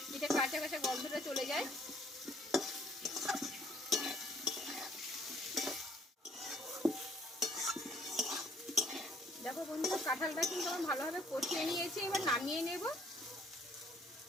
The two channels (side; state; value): both; normal; correlation 0.61